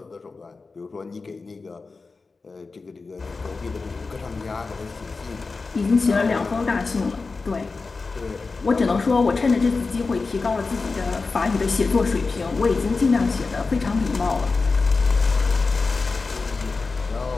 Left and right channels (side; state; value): right; quieter; 4.1 dB